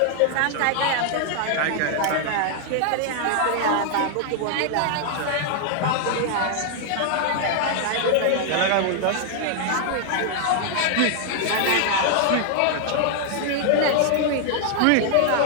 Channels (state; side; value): different; both; correlation 0.00